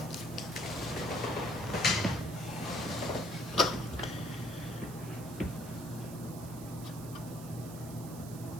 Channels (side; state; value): right; noise; hiss, 15 dB below the sound